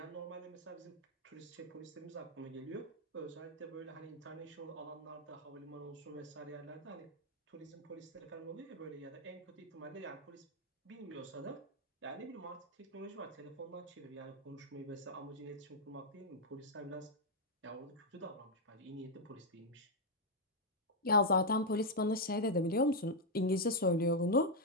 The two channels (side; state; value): both; normal; correlation -0.01